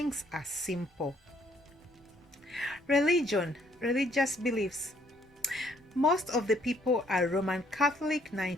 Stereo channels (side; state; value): both; normal; correlation 0.66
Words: are simple. Religion, religious beliefs. Most of the people are Roman Catholic,